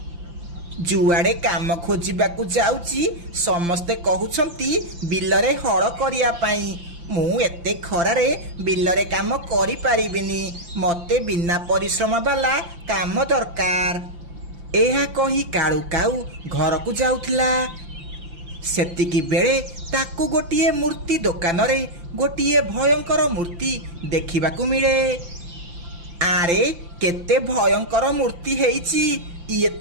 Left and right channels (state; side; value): late; left; 5.8 ms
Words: जुआड़े काम खोजिबाकू जाउची समस्ते कहउछंती बिलरे हळ करिया पाई। मु एते खरारे बिलरे काम करि पारिबिनी, मते बिना परिश्रम वाला काम दरकार। एहा कही काळू काऊ घर को जाउथिला। सेतिकी बेले ताकू गोटिए मूर्ति दुकान रे गोटिए भयंकर मूर्ति देखिबाकू मिले। आरे केते भयंकर मूर्ति हेइची, ये